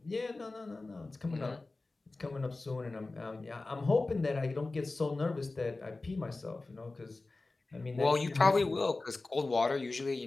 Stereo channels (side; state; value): right; quieter; 3.3 dB